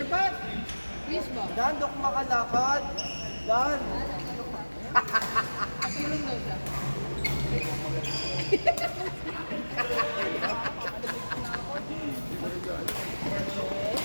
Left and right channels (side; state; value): both; inverted; correlation -1.00